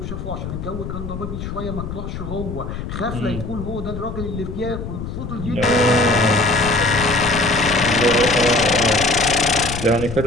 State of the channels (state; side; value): noise; left; rumble, 7 dB below the sound